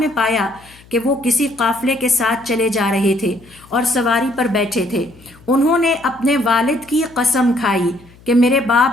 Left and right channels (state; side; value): noise; left; hum, 25 dB below the sound